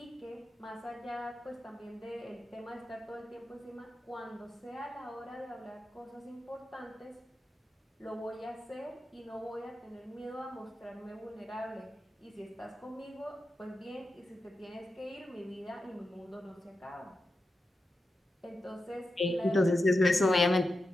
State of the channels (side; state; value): both; normal; correlation 0.90